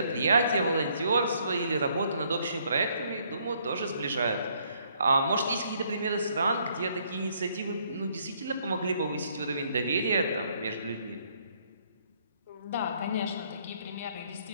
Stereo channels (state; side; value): inverted; both; correlation -0.67